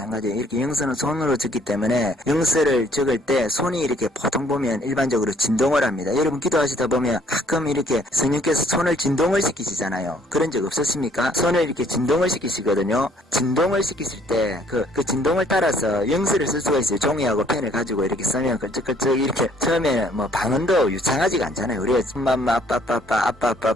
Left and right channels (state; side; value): normal; both; correlation 0.62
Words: 이렇게 영서는 손으로 적기 때문에 영서를 적을 때 손이 이렇게 보통 보면 일반적으로 진동을 합니다. 여러분 기도하시다 보면 가끔 이렇게 성령께서 손을 진동을 시키시잖아요. 그런 적 없었습니까? 손을 이렇게 진동을 시키시거든요. 진동을 시키실 때 그 진동을 따라서 영서를 쓸 수가 있어요. 종이하고 펜을 가지고 이렇게 쓰면 끌적끌적 이렇게 처음에는 뭐 방언도 유창하지가 않잖아요. 우리가 엄마